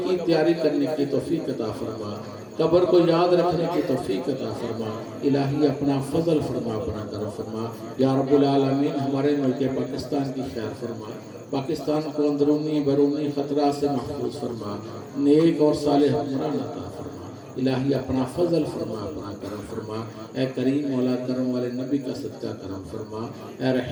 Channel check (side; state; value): both; identical; correlation 1.00